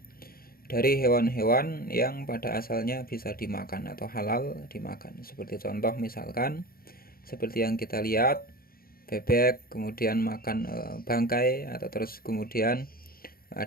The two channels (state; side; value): late; right; 0.43 ms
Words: Dari hewan-hewan yang pada asalnya bisa dimakan atau halal dimakan. Seperti contoh misalkan seperti yang kita lihat, bebek kemudian makan bangkai, atau terus kemudian